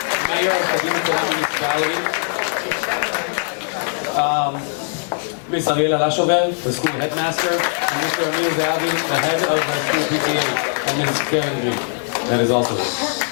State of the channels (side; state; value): right; silent; digital silence